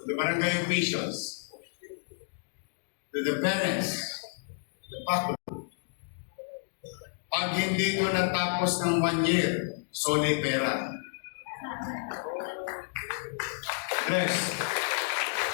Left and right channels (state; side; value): silent; right; digital silence